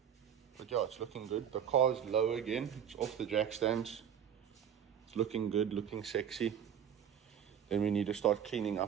But yeah, it's looking good. The car's low again. It's off the jack stands. It's looking good, looking sexy. Then we need to start cleaning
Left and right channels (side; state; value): left; quieter; 8.7 dB